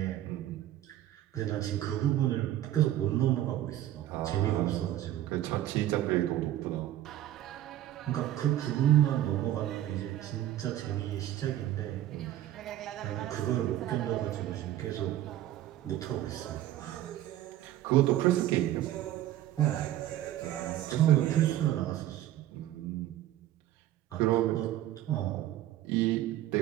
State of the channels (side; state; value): left; quieter; 13.2 dB